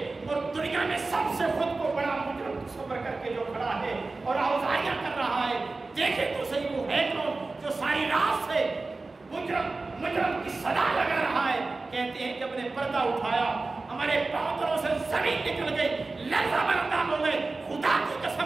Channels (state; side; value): quieter; left; 3.5 dB